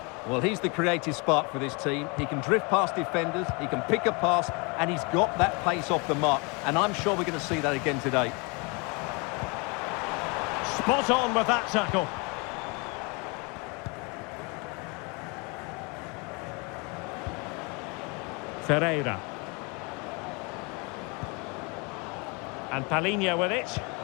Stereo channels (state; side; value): quieter; right; 30.5 dB